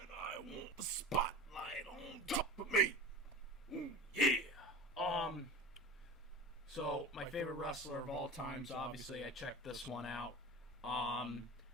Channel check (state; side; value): normal; both; correlation 0.33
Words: I want the spotlight on top of me. Ooh, yeah. So my favorite wrestler of all time, so obviously I checked this one out.